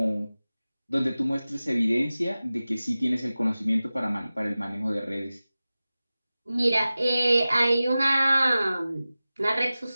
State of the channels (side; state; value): both; inverted; correlation -0.96